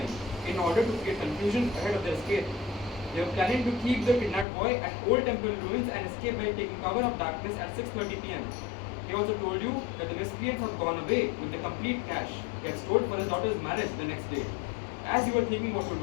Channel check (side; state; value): right; drops out; at 4.5 s